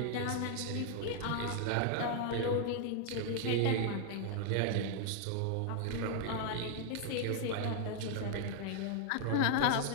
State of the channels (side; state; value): both; different; correlation 0.00